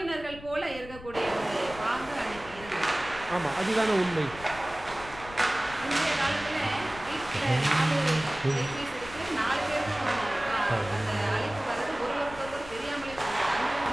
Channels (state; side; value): noise; left; rumble, 16 dB below the sound